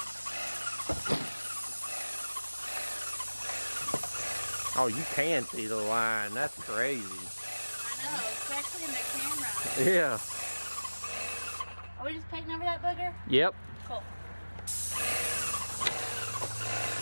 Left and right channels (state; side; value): inverted; both; correlation -1.00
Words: Oh, you can see the line. That's crazy. I know, especially in the camera. Yeah. Are we just painting over that booger? Yep. Cool.